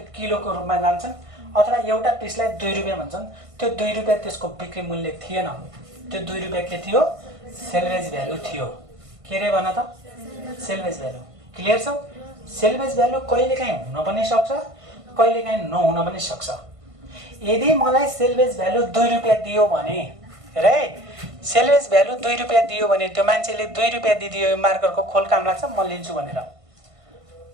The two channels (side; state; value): left; late; 1.5 ms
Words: किलोको रूपमा जान्छन्। अथवा एउटा पिसलाई 2 रुपैयाँ भन्छन्, त्यो 2 रुपैयाँ त्यसको बिक्री मूल्य थिएन, त्यो 2 रुपैयाँ के थियो? सेल्वेज भ्यालु थियो। के रे भन त? Salvage value. क्लियर छ? सेल्वेज भ्यालु कहिलेकाहीँ हुन पनि सक्छ, कहिलेकाहीँ नहुन पनि सक्छ। यदि मलाई सेल्वेज भ्यालु 2 रुपैयाँ दियो भने, हेर है, सेल्वेज भ्यालु 2 रुपैयाँ दियो भने त्यो मान्छेले 2 रुपैयाँ दिदियो, यो मार्करको खोल काम लाग्छ, म लिन्छु भनेर।